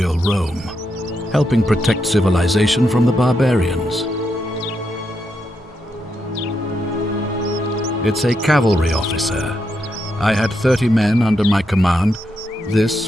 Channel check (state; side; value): normal; both; correlation 0.82